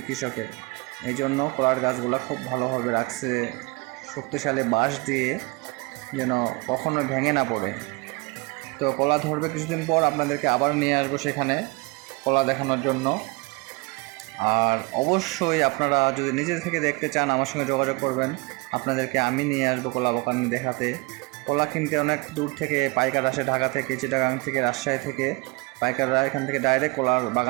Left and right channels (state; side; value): quieter; left; 26.6 dB